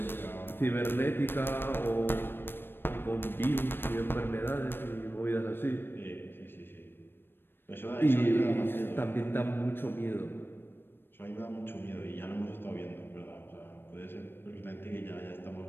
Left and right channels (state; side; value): late; right; 0.10 ms